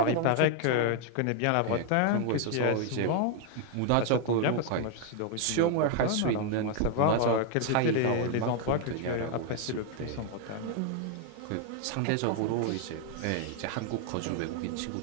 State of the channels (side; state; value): both; different; correlation 0.00